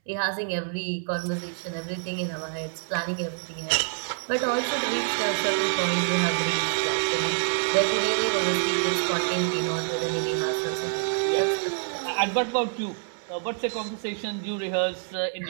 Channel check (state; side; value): silent; left; 60 dB below the other